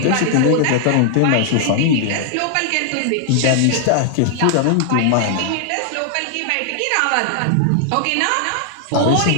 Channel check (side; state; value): both; different; correlation -0.01